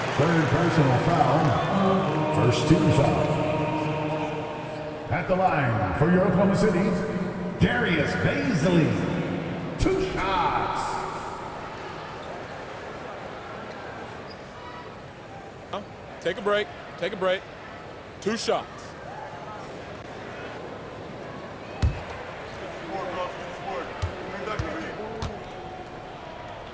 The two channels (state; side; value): identical; both; correlation 1.00